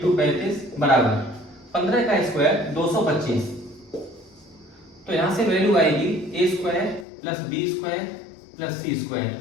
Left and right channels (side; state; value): right; drops out; at 7.1 s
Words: 35 बराबर 15 का स्क्वायर 225। तो यहां से वैल्यू आएगी A square plus B square plus C square